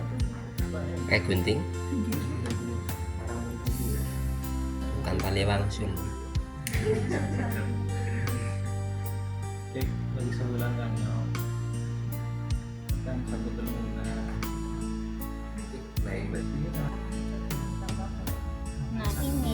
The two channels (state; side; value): identical; both; correlation 1.00